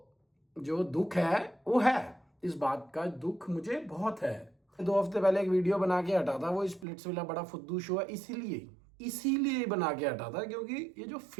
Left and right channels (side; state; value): left; drops out; at 6.9 s